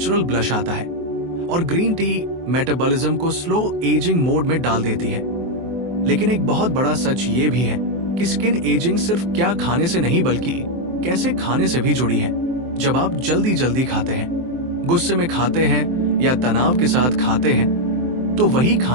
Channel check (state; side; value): late; left; 23 ms